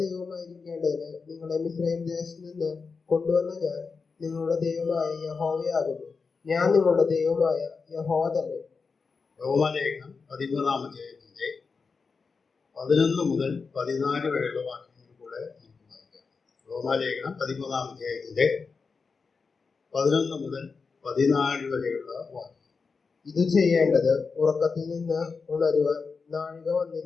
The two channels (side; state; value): right; quieter; 4.9 dB